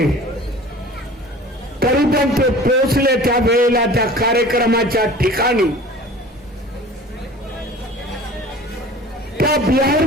तरी पण ते पोहोचले त्या वेळेला त्या कार्यक्रमाच्या ठिकाणी. त्या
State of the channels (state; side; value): normal; both; correlation 0.43